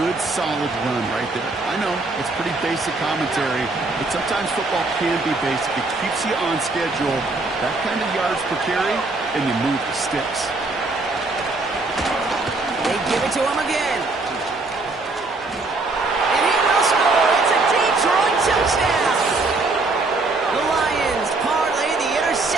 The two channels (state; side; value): quieter; left; 3.4 dB